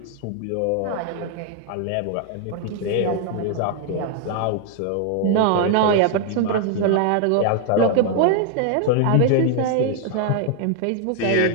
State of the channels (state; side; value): different; both; correlation 0.00